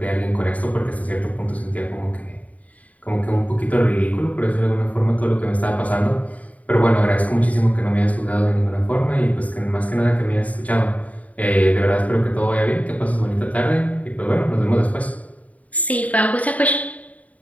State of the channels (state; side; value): late; right; 0.070 ms